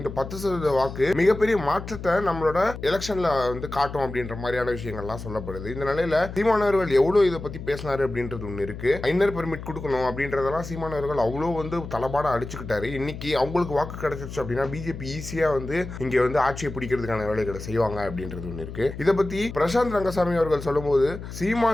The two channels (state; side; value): noise; left; hum, 10 dB below the sound